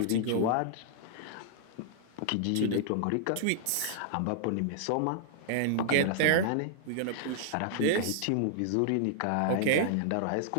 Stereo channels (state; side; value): different; both; correlation -0.01